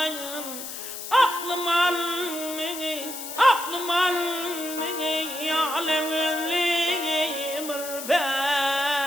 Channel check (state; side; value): noise; left; hiss, 9 dB below the sound